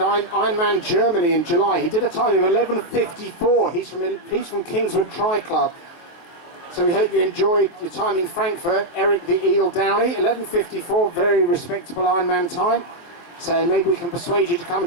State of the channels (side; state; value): right; late; 24 ms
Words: Germany in July. He did a time of 11:54. He's from Kingswood Tri Club. So we hope you enjoyed your time in Frankfurt. Eric the Eel Downey, 11:54, very respectable Ironman time. So maybe we can persuade you to come